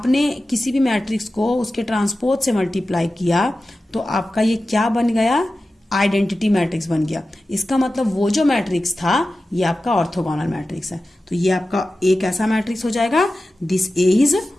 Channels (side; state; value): both; normal; correlation 0.94